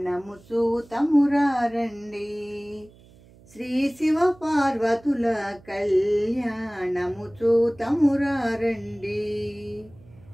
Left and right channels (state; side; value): noise; right; hum, 25 dB below the sound